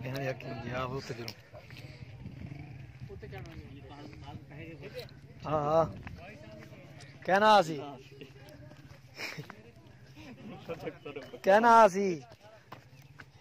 बयान यकीन जी आप उते जरूर हां हां कहना आसी कहना आसी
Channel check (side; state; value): both; identical; correlation 1.00